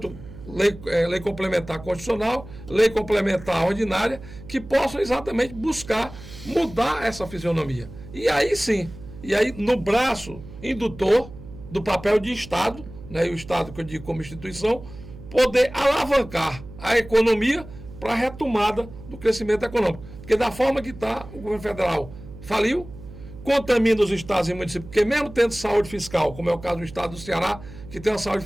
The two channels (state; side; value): noise; right; hum, 16 dB below the sound